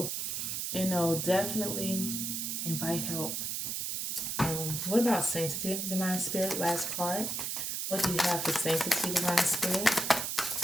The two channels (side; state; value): right; noise; hiss, 2 dB below the sound